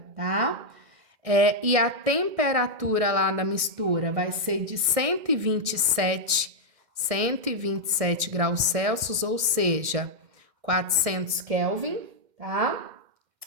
tá? E a temperatura lá da mistura vai ser de 127 graus Celsius, ou seja, 400 Kelvin, tá?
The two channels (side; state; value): left; late; 2.1 ms